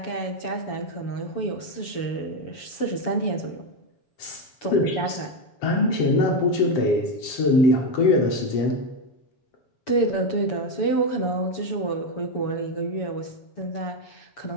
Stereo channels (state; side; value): late; right; 7.1 ms